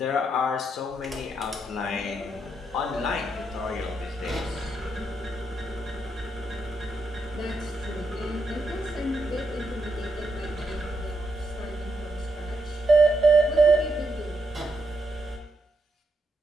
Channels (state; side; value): normal; both; correlation 0.80